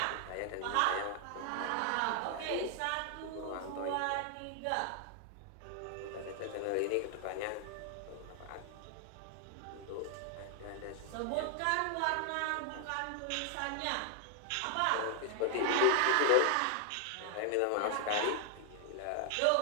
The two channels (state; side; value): different; both; correlation 0.00